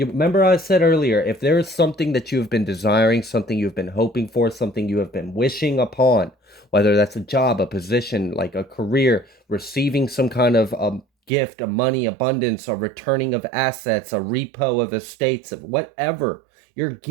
remember I said earlier, if there is something that you have been desiring, something you've been hoping for, something you have been wishing upon, whether that's a job, a position, like a career, receiving some kind of gift, a money abundance, a returning of assets, a repo of estates, of whatever, you're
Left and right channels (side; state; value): left; drops out; at 11.3 s